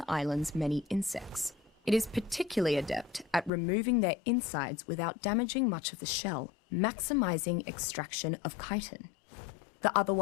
island's many insects. It is particularly adept at removing their insides without damaging much of the shell, maximizing extraction of chitin. The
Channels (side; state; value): right; drops out; at 3.5 s